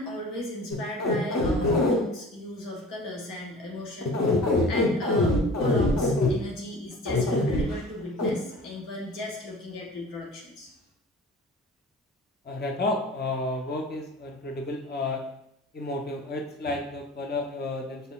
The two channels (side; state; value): both; normal; correlation 0.41